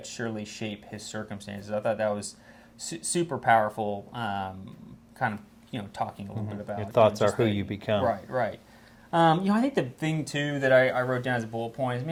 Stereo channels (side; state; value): both; identical; correlation 1.00